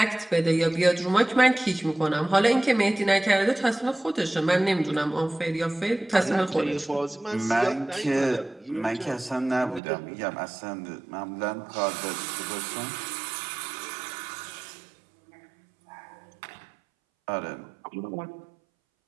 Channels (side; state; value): left; drops out; at 9.8 s